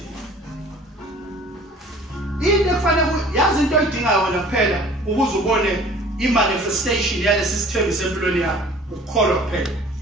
into kufanele yazi into oyidingayo wena kuphela ukuze ubone i-manifestation yalesi sithembiso empilweni yakho ukukholwa kuphela.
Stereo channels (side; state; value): both; normal; correlation 0.49